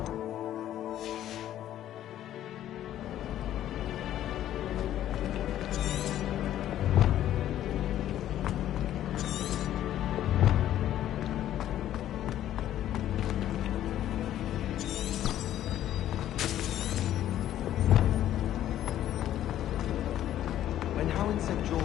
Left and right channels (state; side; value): quieter; right; 12.1 dB